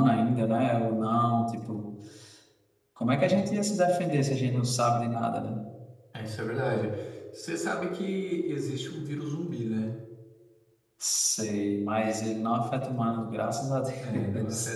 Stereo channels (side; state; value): both; identical; correlation 1.00